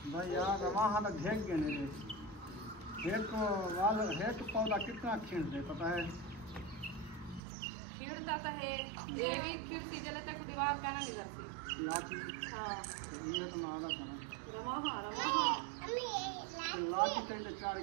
भाई यार, रवाहा तो घेक गए ने। एक पौधा कितना खींचते पता है? खिड़ता तो है, ये भी खिड़ती जले तक दीवार का ना निकलती। लाची, हाँ ये तो मैं आधा था। रवाहा रवाहा लाची तो चार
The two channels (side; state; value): left; drops out; at 7.4 s